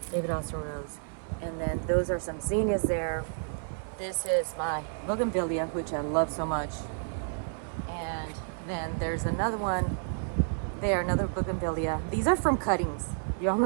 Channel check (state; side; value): silent; left; 57 dB below the other